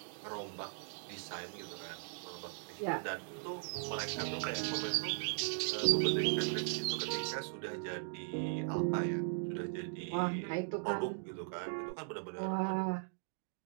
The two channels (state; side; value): silent; left; digital silence